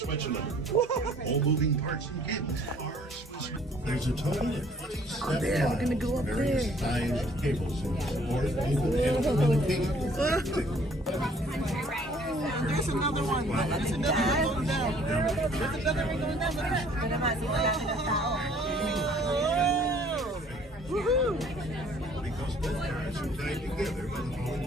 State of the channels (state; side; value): normal; both; correlation 0.58